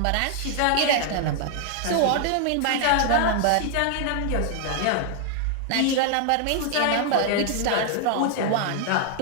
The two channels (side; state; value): both; different; correlation 0.00